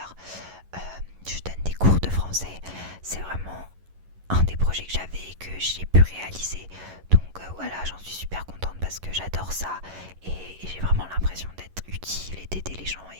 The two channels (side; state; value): left; late; 11 ms